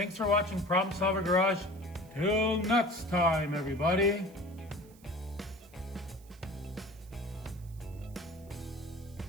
for watching Problem Solver Garage. Till next time, everybody.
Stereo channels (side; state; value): right; noise; hiss, 26 dB below the sound